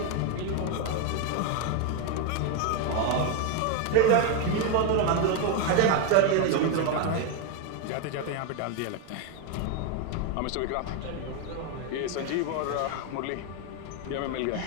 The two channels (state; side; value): different; both; correlation 0.01